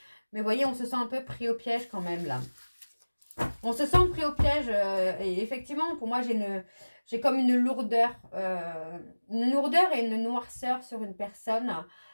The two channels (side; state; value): both; inverted; correlation -1.00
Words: Mais vous voyez, on se sent un peu pris au piège quand même là. On se sent pris au piège et effectivement, pour moi, j'ai comme une lourdeur et une noirceur sur une personne